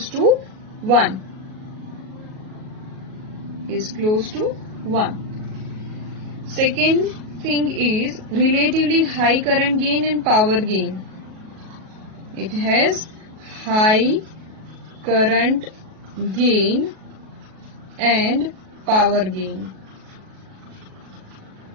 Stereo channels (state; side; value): late; left; 37 ms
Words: to 1. Second thing is relatively high current gain and power gain. It has high current gain and power gain.